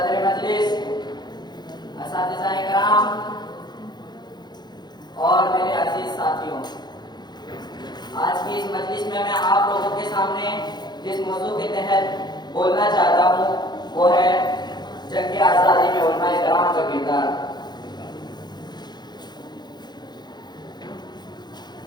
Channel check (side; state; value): right; late; 0.21 ms